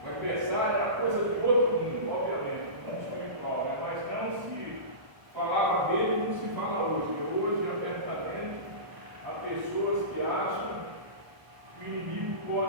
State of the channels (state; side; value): late; left; 1.2 ms